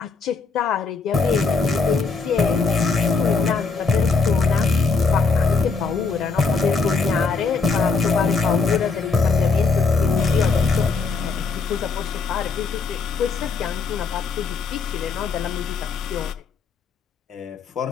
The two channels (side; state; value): right; quieter; 4.4 dB